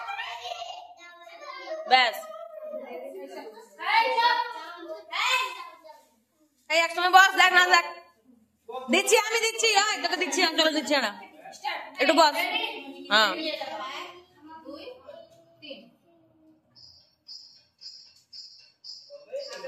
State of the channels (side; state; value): both; identical; correlation 1.00